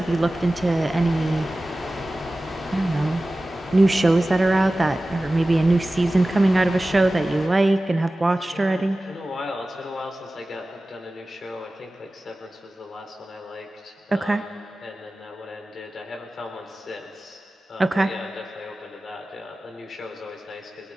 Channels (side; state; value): both; normal; correlation 0.96